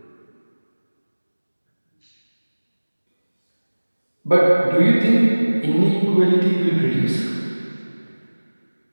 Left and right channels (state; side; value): inverted; both; correlation -1.00